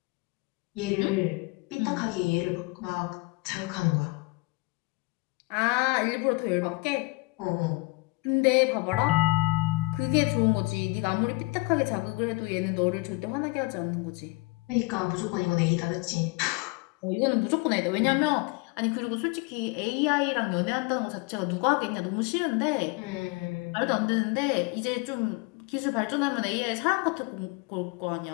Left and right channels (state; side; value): quieter; right; 24.8 dB